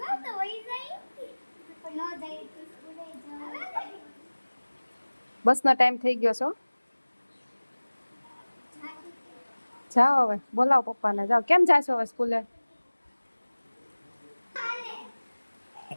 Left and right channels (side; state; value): both; inverted; correlation -1.00